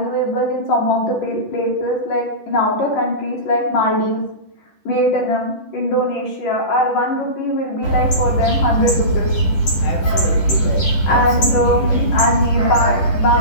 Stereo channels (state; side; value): late; right; 10 ms